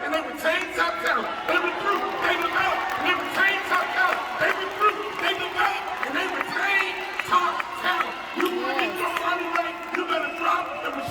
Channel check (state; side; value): identical; both; correlation 1.00